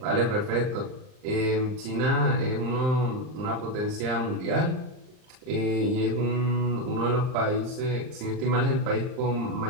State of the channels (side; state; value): left; late; 39 ms